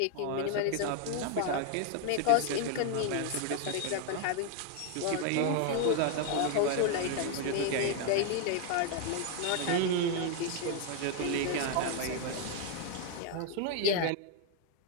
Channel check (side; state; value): both; different; correlation 0.00